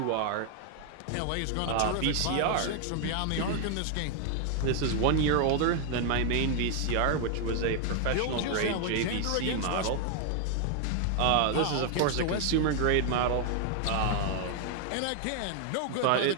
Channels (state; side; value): different; both; correlation 0.00